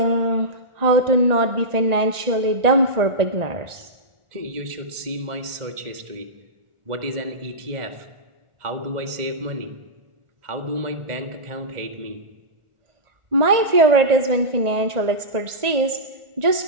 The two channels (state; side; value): late; left; 1.4 ms